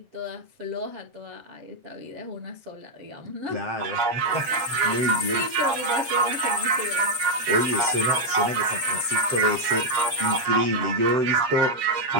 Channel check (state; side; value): late; left; 7.3 ms